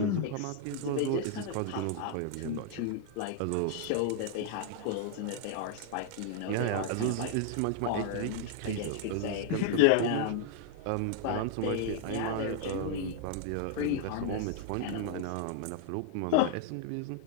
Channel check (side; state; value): both; different; correlation 0.00